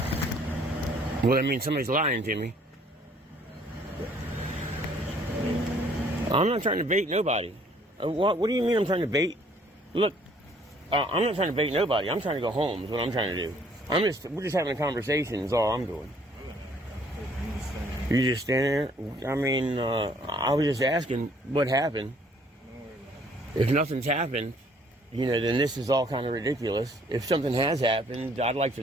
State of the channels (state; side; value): normal; both; correlation 0.61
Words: Well, that means somebody's lying to me. I'm not trying to bait nobody. What do you mean I'm trying to bait? Look, I'm not trying to bait nobody. I'm trying to go home is what I'm trying to do. We're just having a conversation is all I'm doing. You just standing there? I mean, I was just asking what happened. If nothing's happened, you know, then this is all kind of ridiculous. If something has happened, I'd like to